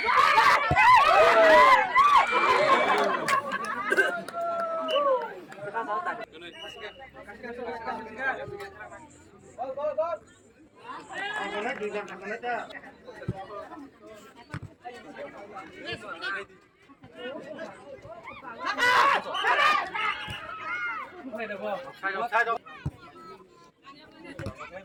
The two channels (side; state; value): both; identical; correlation 1.00